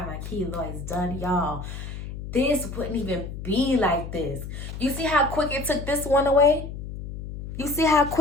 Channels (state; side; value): noise; left; hum, 9 dB below the sound